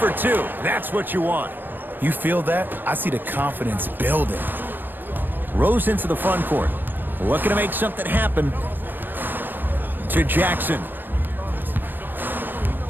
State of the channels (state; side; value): late; left; 0.093 ms